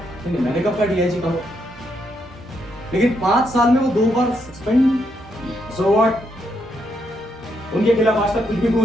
लेकिन मैंने कब का डीआईजी कहा? लेकिन 5 साल में वो 2 बार सस्पेंड। So what? उनके खिलाफ आज तक कुछ भी प्रूव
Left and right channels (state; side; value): normal; both; correlation 0.78